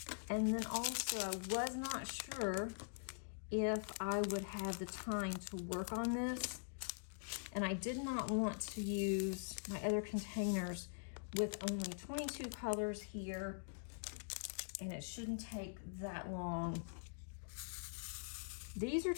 And then also I was not sure if I would have the time to work on this. And I did not want to use my other containers with only 22 colors here. And it shouldn't take that long. These are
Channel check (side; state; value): right; silent; digital silence